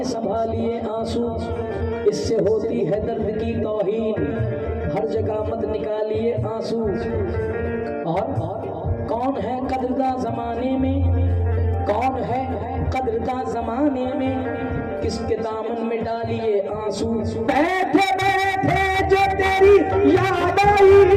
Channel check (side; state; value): both; identical; correlation 1.00